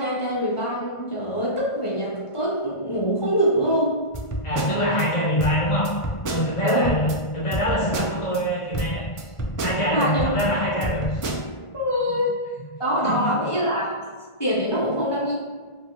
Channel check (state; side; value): late; right; 1.5 ms